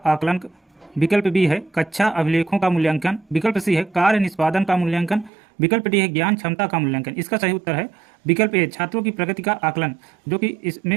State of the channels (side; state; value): left; drops out; at 5.3 s